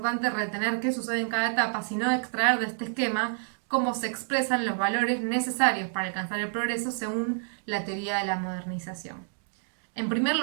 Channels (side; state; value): left; silent; digital silence